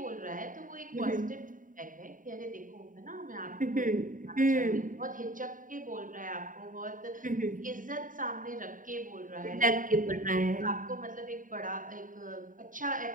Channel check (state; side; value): late; left; 0.39 ms